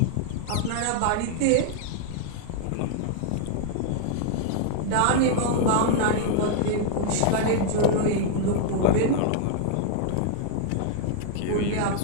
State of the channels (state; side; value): different; both; correlation 0.00